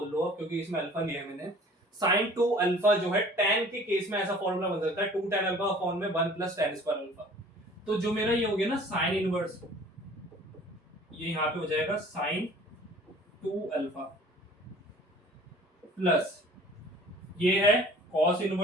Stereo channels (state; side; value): normal; both; correlation 0.49